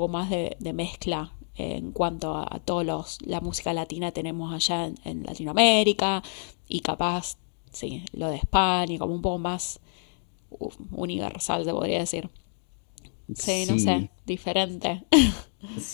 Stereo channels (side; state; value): right; silent; 59 dB below the other